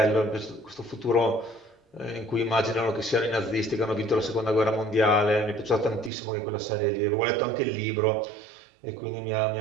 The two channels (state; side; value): drops out; left; at 6.1 s